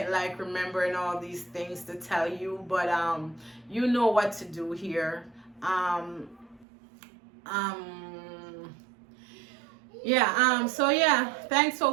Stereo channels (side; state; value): left; drops out; at 6.7 s